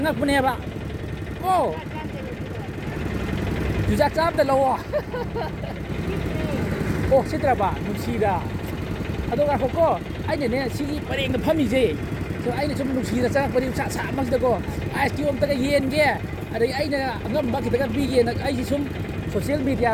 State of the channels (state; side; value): identical; both; correlation 1.00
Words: 봐 오 주작 짬다 러워 오 시들어봐 누시다 아도가 호고 아이네 시기 버랭가 팜이지 저 아이네 좀 누시다 짱각분이 차 막시다고 아이스 엄다가 이엔게 ꯑꯗꯒꯤ ꯑꯩꯅ ꯑꯉꯝꯕ ꯈꯤꯇꯪ ꯄꯤꯒꯦꯅ ꯑꯩꯁꯤ ꯁꯨꯝ ꯁꯣꯁꯤꯌꯦꯜ